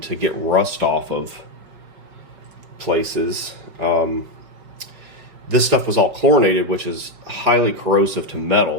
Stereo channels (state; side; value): late; left; 5.3 ms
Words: to get rust off of places. This stuff was all chlorinated, which is highly corrosive to